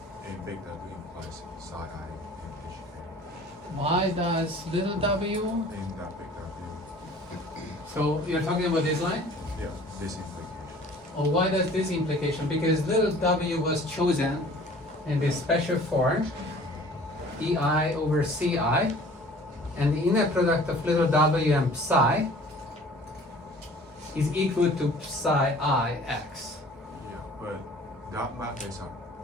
and big W implies psi I in HK? Why does little w? In that big W. So you're talking about this line? Yeah, this implication. Or why does this implication? Because little w was chosen in this special form, EI over CI, and the inner product of little w and psi is equal to psi I x. Yeah, but that map is an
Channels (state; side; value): normal; both; correlation 0.49